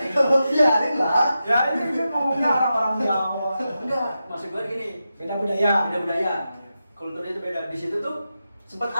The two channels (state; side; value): inverted; both; correlation -0.90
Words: Kalau biarin lah. Ya ini kan ngomongnya orang-orang Jawa. Enggak, maksud gue gini, Beda budaya. beda budaya. Kulturnya itu beda. Di situ tuh sempat